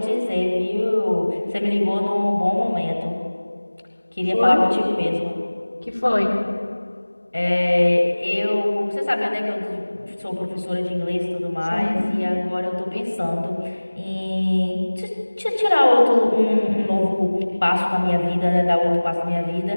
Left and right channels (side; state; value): both; inverted; correlation -1.00